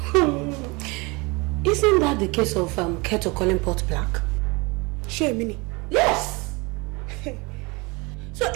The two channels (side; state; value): left; quieter; 26.6 dB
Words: Isn't that the case of Keto calling pot black? Sure, Mini. Yes! So